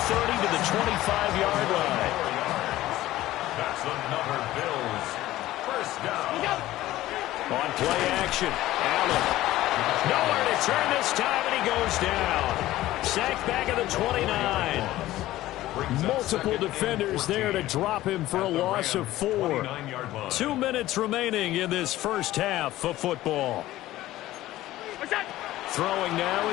to the 25-yard line. That's another Bills 1st down. On play action, Allen. Nowhere to turn this time, and he goes down. Sacked back at the 29. Multiple defenders there to drop him for a loss of 4. 2 minutes remaining in this first half of football. Throwing now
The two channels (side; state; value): right; quieter; 15.7 dB